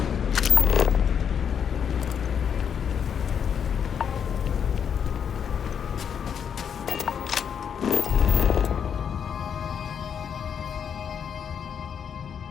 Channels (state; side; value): quieter; right; 7.7 dB